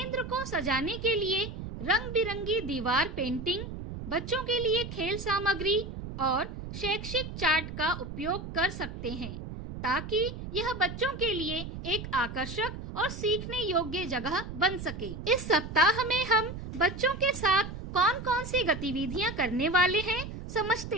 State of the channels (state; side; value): noise; right; rumble, 9 dB below the sound